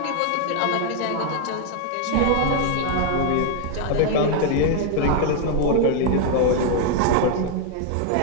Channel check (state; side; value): different; both; correlation 0.00